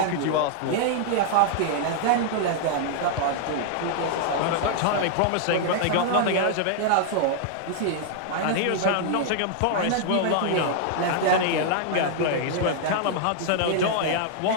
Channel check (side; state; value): both; different; correlation -0.01